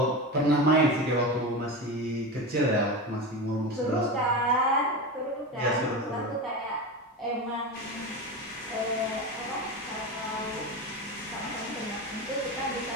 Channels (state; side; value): normal; both; correlation 0.23